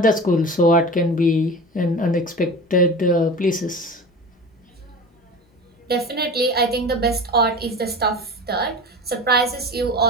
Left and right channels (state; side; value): normal; both; correlation 0.33